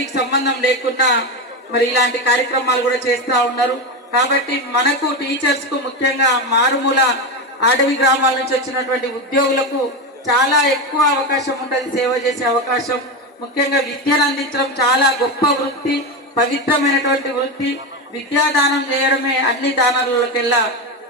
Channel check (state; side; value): normal; both; correlation 0.15